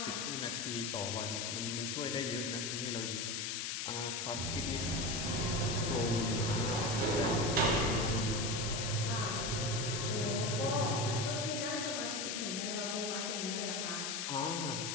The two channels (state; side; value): noise; left; hiss, 2 dB below the sound